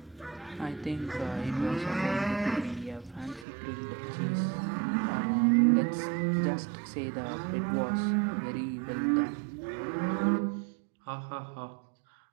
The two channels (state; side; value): drops out; left; at 3.5 s